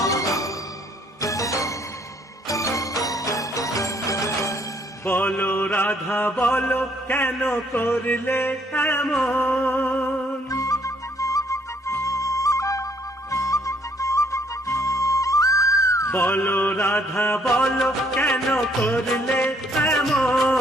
বলো রাধা বলো কেন করলে এমন, বলো রাধা বলো কেন করলে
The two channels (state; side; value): normal; both; correlation 0.65